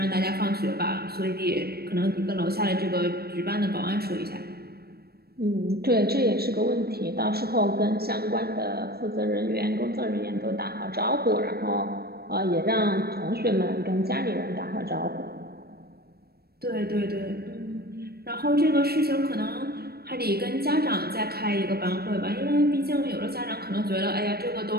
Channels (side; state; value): left; late; 0.46 ms